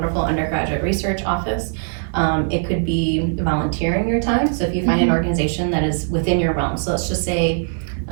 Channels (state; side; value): silent; left; 66 dB below the other